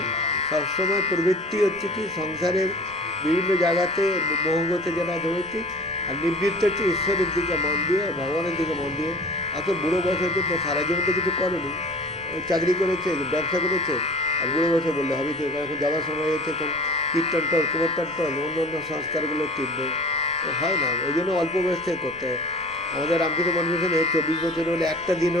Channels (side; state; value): right; noise; rumble, 22 dB below the sound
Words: সবসময় প্রবৃত্তি হচ্ছে কি সংসারের বিভিন্ন জায়গাতে মোহগতে যারা ধরেছি, আর নিবৃত্ত হচ্ছে ঈশ্বরের দিকে মন দিয়ে, ভগবানের দিকে মন দিয়ে। এত বুড়ো বয়স হচ্ছে তো সারা জীবন তো কিছু করেনি, চাকরি করেছে, ব্যবসা করেছে, আর বুড়ো বয়সে বললে হবে কি, এখন যাওয়ার সময় হচ্ছে এখন কীর্তন টল, কুমোরটান টল, অন্য অন্য সংস্কারগুলো টিপবে, হয় না। ওই জন্য অল্প বয়স থেকে করতে হয়। আমাদের রামকৃষ্ণ মনমিশনে 24 বছর হলে একটা দিন